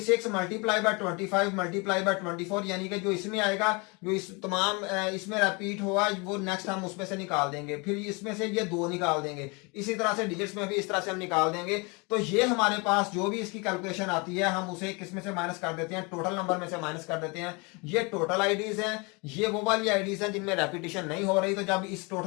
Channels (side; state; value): right; quieter; 29.5 dB